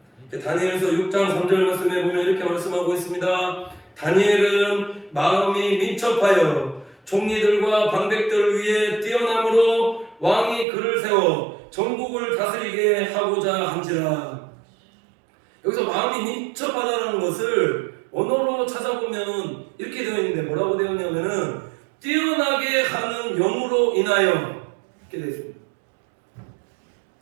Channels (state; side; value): drops out; left; at 10.7 s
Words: 다니엘서 6장 3절 말씀에 보면 이렇게 말씀하고 있습니다. 다니엘은 마음이 민첩하여 총리들과 방백들 위에 뛰어남으로 왕이 그를 세워 전국을 다스리게 하고자 한지라. 여기서 마음이 민첩하다는 것을 언어로 찾아보면 이렇게 되어 있는데, 뭐라고 되어 있냐면은 뛰어나게 하는 영으로 인하여, 이렇게 되어 있습니다.